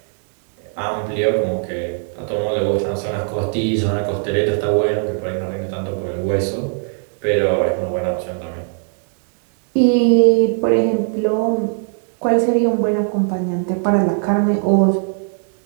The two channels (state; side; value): silent; left; 59 dB below the other